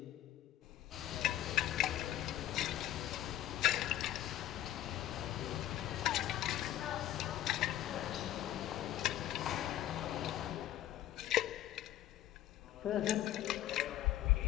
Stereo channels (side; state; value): right; quieter; 13.2 dB